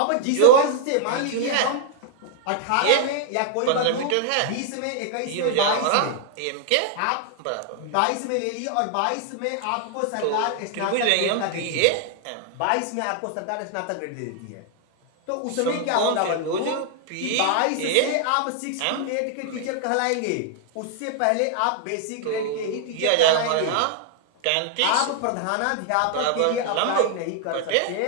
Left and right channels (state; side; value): different; both; correlation 0.00